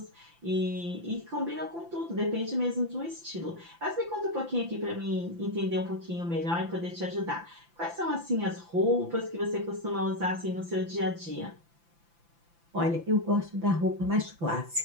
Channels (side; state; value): left; late; 5.9 ms